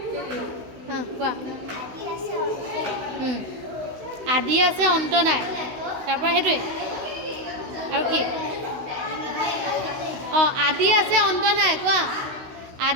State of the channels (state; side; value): late; left; 16 ms